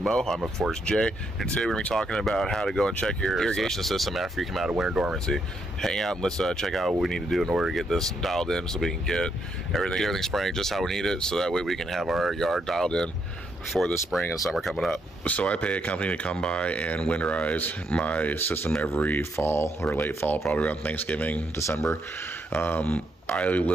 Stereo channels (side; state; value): both; normal; correlation 0.76